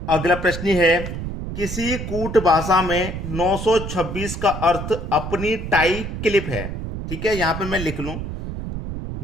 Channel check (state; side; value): noise; right; rumble, 6 dB below the sound